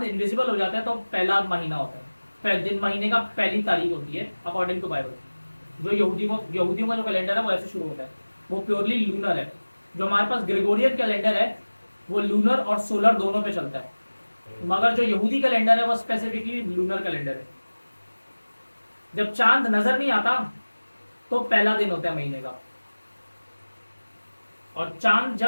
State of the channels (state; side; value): inverted; both; correlation -1.00